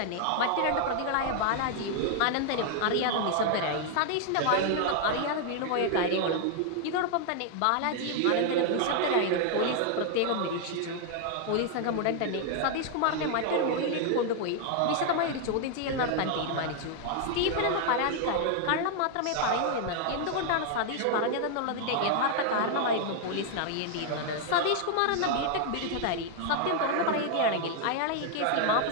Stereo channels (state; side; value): different; both; correlation 0.00